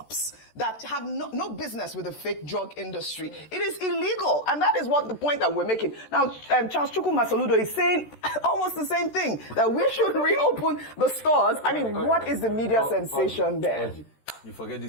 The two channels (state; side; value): late; right; 13 ms